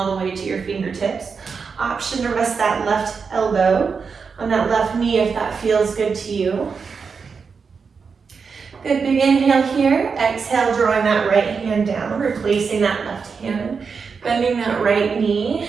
the way to your fingertips. Option to rest that left elbow on that left knee if that feels good to you. Good, big inhale here. Exhale, drawing that right hand down, replacing that left hand. Bending that right knee.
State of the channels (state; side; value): quieter; left; 5.5 dB